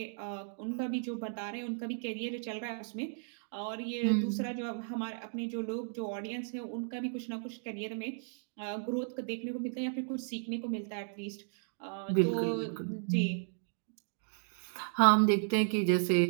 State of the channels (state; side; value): silent; left; digital silence